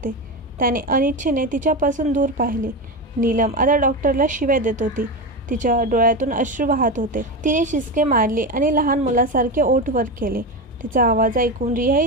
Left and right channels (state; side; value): normal; both; correlation 0.18